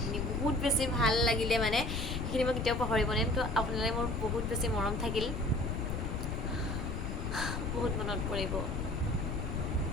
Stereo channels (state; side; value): noise; left; rumble, 1 dB below the sound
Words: বহুত বেছি ভাল লাগিলে মানে, সেইখিনি মই কেতিয়াও পাহৰিব নোৱাৰিম। তো আপোনালৈ মোৰ বহুত বেছি মৰম থাকিল, বহুত মনত পৰিব।